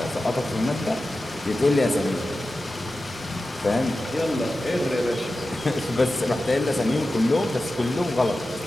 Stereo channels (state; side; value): normal; both; correlation 0.93